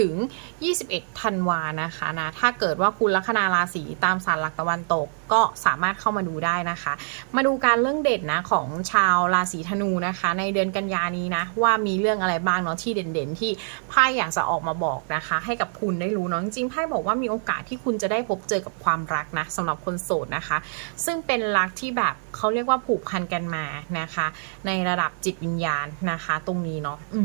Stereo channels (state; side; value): silent; left; digital silence